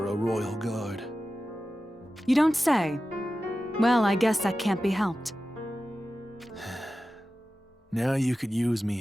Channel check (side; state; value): both; normal; correlation 0.94